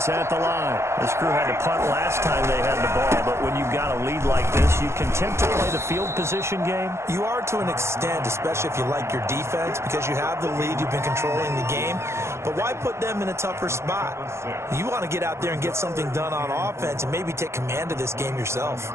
at the line. This crew had to punt last time they had the ball, but when you've got a lead like this, you can tend to play the field position game. You are to an extent, especially if you like your defense, because you have the lead, you've been controlling the game. But why put them in a tougher spot? You want to get out there and get something done on offense and maybe take command of this game yourself.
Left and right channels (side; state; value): left; late; 0.13 ms